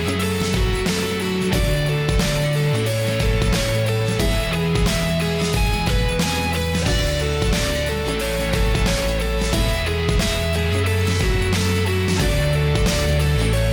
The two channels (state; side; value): identical; both; correlation 1.00